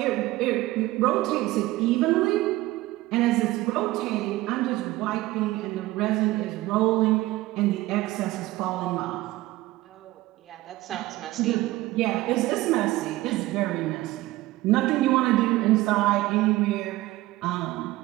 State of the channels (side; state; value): left; quieter; 17.9 dB